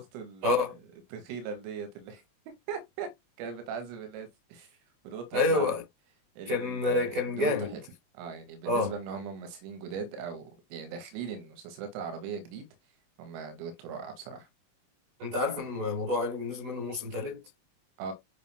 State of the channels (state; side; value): late; left; 22 ms